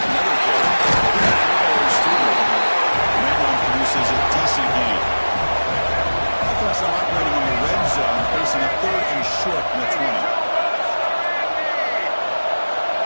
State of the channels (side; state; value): both; inverted; correlation -1.00